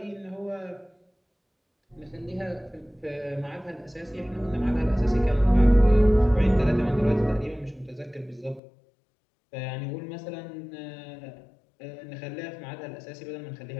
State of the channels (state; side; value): drops out; right; at 8.6 s